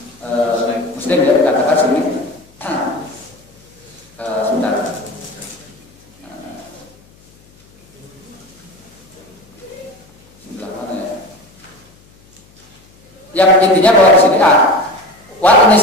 Muslim ya dikatakan sini. Sebentar. Sebelah mana ya? Yang intinya bahwa di sini ini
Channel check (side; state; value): left; noise; hum, 29 dB below the sound